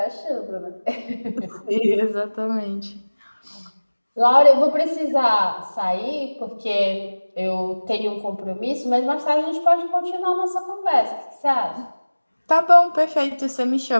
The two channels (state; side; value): inverted; both; correlation -1.00